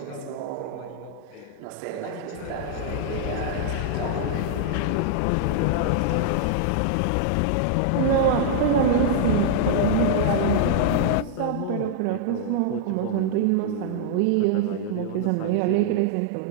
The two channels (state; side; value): different; both; correlation -0.01